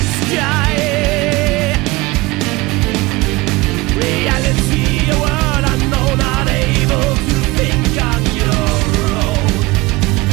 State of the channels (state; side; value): quieter; left; 22.2 dB